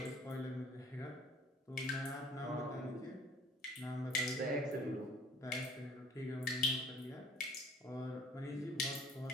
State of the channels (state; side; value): normal; both; correlation 0.53